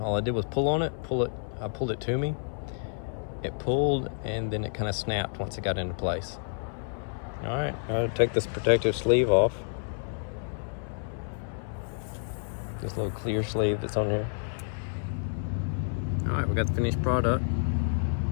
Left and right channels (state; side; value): silent; right; 58 dB below the other